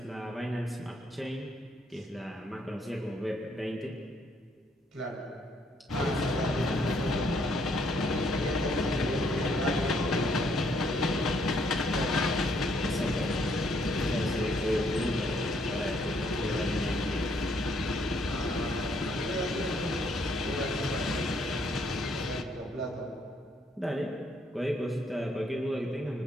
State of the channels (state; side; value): normal; both; correlation 0.69